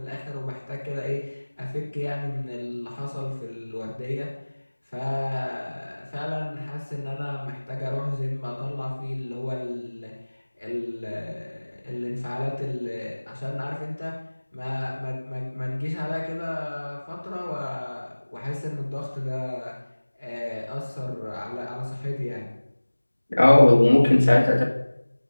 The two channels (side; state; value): both; inverted; correlation -1.00